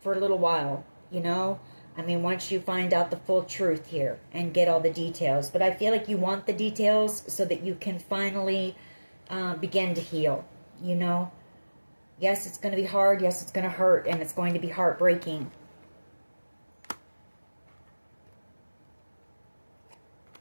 a little while, you know. I mean, once you find out the full truth here and get all the details. But I feel like you want the details so that you can finally begin to heal, you know. Yes, it's going to be hard. Yes, it's going to hurt, and it's going to be heartbreaking.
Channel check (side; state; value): both; inverted; correlation -1.00